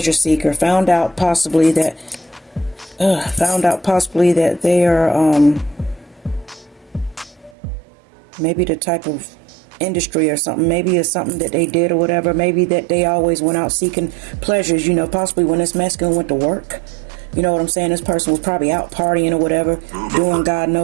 seeker. Found out possibly that they are maybe the type of industry or something. Maybe it's something that they did or whatever. Maybe that they always went out seeking pleasures, you know, possibly when this masculine went to work. You know what I'm saying? This person was probably out partying or whatever, doing God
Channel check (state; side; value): drops out; left; at 7.6 s